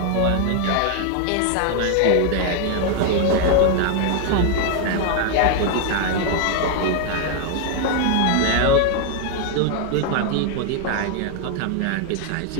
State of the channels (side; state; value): both; different; correlation 0.00